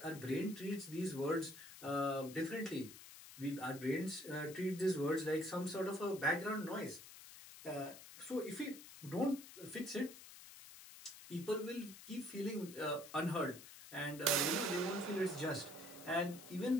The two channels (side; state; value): left; noise; hiss, 15 dB below the sound